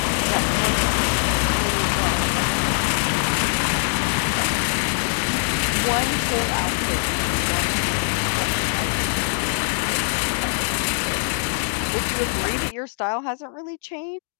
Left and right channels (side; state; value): right; silent; digital silence